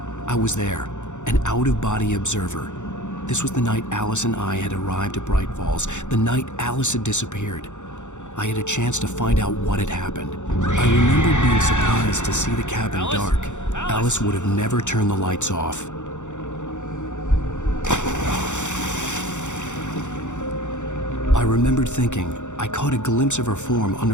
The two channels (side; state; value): right; late; 0.85 ms